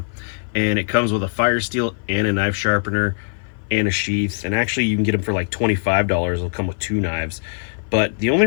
And it comes with a fire steel and a knife sharpener and a sheath. And actually you can get them for like $25. It'll come with 2 knives. But the only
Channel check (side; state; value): right; silent; 56 dB below the other